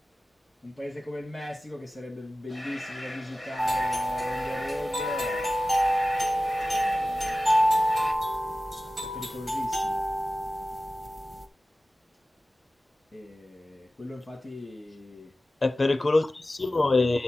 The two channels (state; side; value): normal; both; correlation 0.96